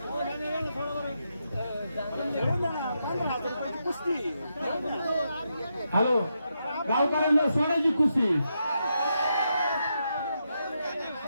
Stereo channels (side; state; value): both; inverted; correlation -0.83